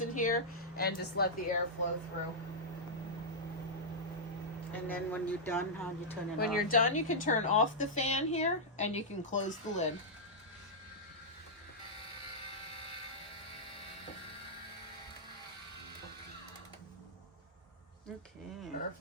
in here and just let the air flow through. And then when you're done, how do you turn it off? When you're done, you can turn off the fan here and you can close the lid. Okay.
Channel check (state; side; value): normal; both; correlation -0.09